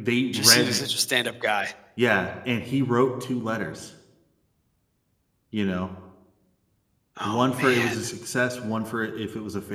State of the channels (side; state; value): both; identical; correlation 1.00